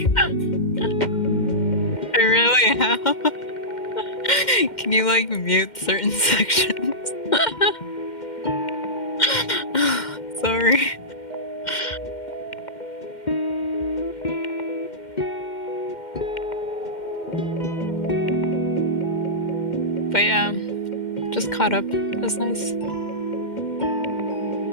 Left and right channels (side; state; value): right; late; 2.1 ms